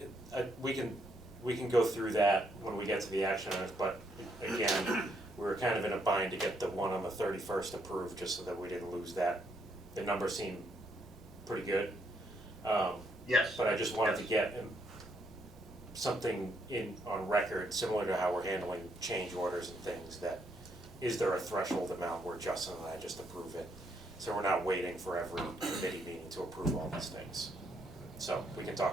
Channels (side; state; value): both; normal; correlation 0.74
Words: can go through that when we get to the action items, but again, we were kind of in a bind to get the one on the 31st approved, just so that we didn't lose that. The numbers seem pretty good. Yes. But I just wanted to get something on record, similar to how we're handling change orders and things, that is there a threshold amount where Justin and I just approve it? So we're not waiting for every committee meeting to approve all these things. So we can